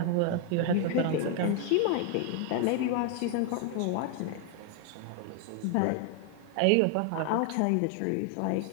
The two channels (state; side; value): different; both; correlation 0.00